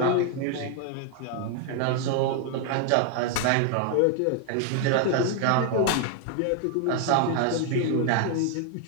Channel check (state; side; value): different; both; correlation 0.00